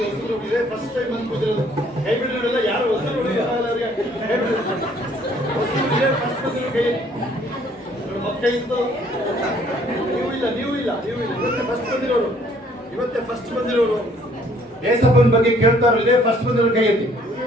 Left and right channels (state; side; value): normal; both; correlation 0.61